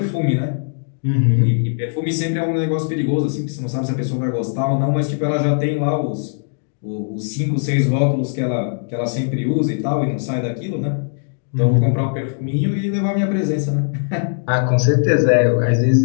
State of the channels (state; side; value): silent; right; digital silence